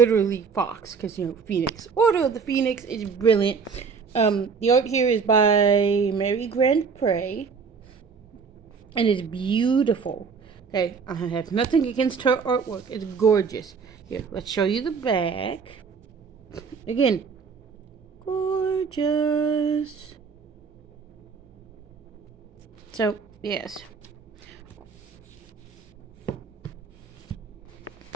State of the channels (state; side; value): quieter; left; 5.6 dB